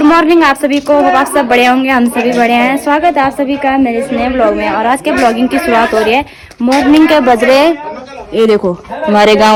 मॉर्निंग आप सभी को। आप सब बड़े होंगे, हम सभी बड़े हैं। स्वागत है आप सभी का मेरे इस नए ब्लॉग में। और आज के ब्लॉगिंग की शुरुआत हो रही है। मॉर्निंग के बज रहे, ये देखो हमारे गांव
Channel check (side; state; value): both; identical; correlation 1.00